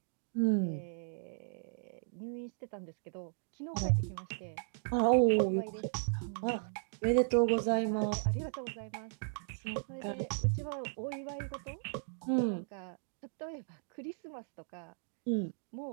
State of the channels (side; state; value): left; silent; digital silence